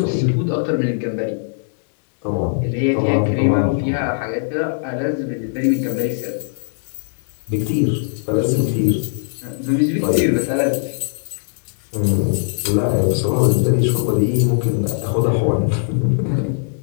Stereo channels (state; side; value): silent; right; digital silence